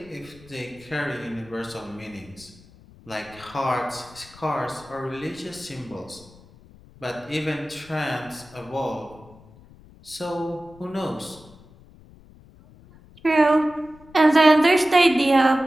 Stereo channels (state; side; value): noise; left; rumble, 23 dB below the sound